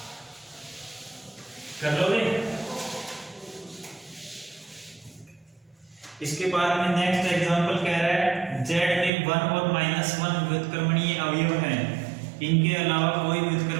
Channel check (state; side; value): drops out; left; at 9.1 s